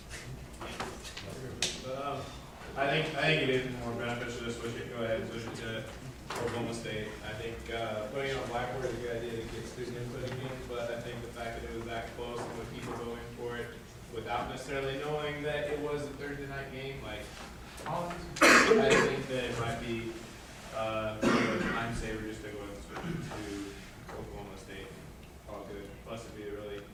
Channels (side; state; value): both; identical; correlation 1.00